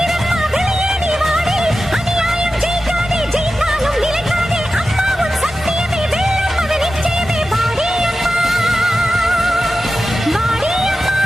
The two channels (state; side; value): normal; both; correlation 0.93